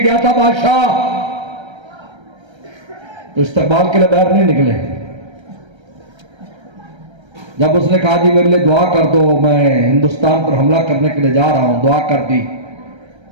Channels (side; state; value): left; late; 1.3 ms